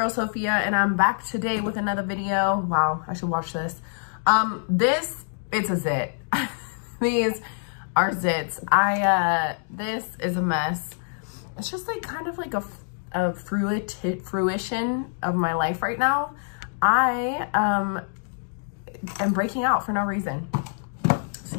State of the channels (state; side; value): silent; right; digital silence